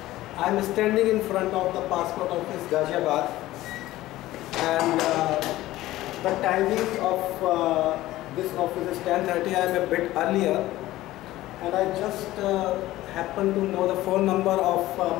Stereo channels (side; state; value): right; quieter; 16.2 dB